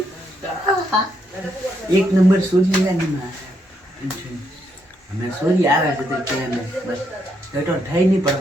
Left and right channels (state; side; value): normal; both; correlation 0.76